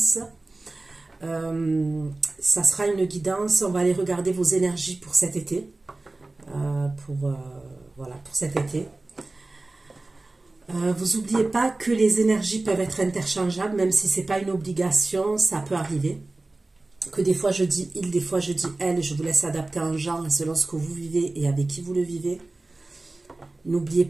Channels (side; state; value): left; quieter; 3.1 dB